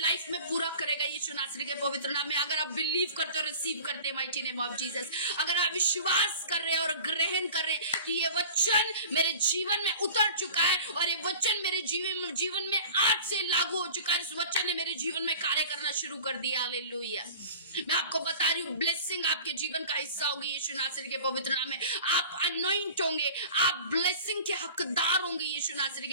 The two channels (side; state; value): both; inverted; correlation -0.41